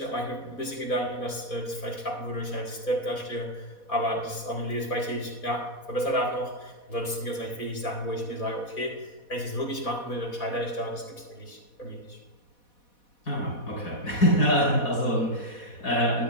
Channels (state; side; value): late; right; 4.1 ms